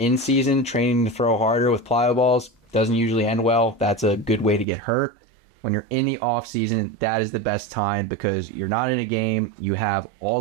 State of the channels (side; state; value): left; drops out; at 4.7 s